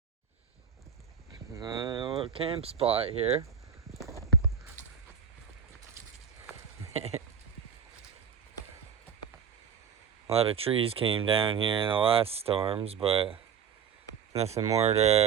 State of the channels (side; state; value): left; quieter; 7.4 dB